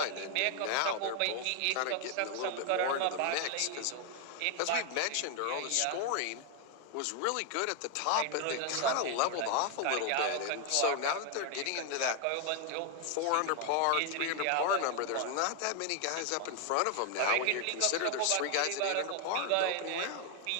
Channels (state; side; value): different; both; correlation 0.00